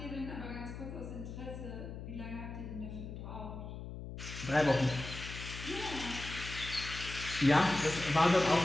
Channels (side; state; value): left; noise; hum, 9 dB below the sound